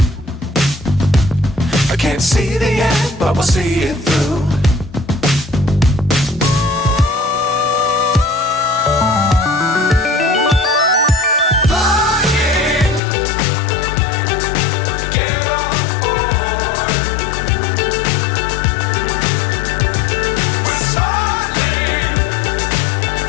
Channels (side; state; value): right; drops out; at 13.0 s